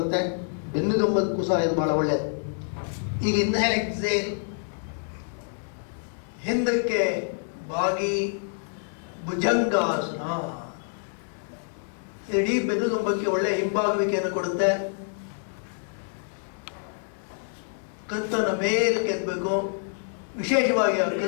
ಬೆನ್ನುದುಂಬಕ್ಕೂ ಸಹ ಇದು ಬಹಳ ಒಳ್ಳೆಯದು. ಈಗ ಇನ್ಹೇಲ್, ಎಕ್ಸೇಲ್, ಹಿಂದಕ್ಕೆ ಬಾಗಿ ಭುಜಂಗಾಸನ. ಇಡೀ ಬೆನ್ನುದುಂಬಕ್ಕೆ ಒಳ್ಳೆಯ ಹಿಂಬಾಗುವಿಕೆಯನ್ನು ಕೊಡುತ್ತೆ. ಕತ್ತನ್ನು ಮೇಲಕ್ಕೆ ಎತ್ತಬೇಕು. ವಿಶೇಷವಾಗಿ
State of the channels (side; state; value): right; silent; digital silence